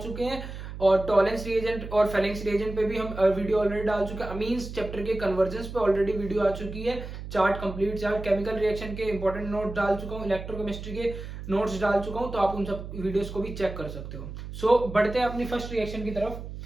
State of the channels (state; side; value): noise; right; hum, 10 dB below the sound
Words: हैं और टॉलेंस रिएजेंट और फेलेंस रिएजेंट पे भी हम वीडियो ऑलरेडी डाल चुके हैं। अमीन्स चैप्टर के कन्वर्जेंस पे ऑलरेडी वीडियो आ चुकी है, chart complete chart, chemical reaction के इंपॉर्टेंट नोट डाल चुका हूँ, इलेक्ट्रोकेमिस्ट्री के नोट्स डाल चुका हूँ, तो आप उन सब वीडियोस को भी चेक कर सकते हो। सो बढ़ते हैं अपनी फर्स्ट रिएक्शन की तरफ,